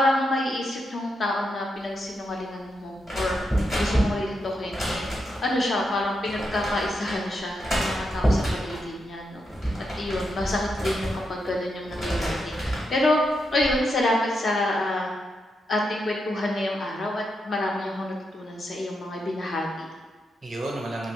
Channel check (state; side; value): normal; both; correlation 0.84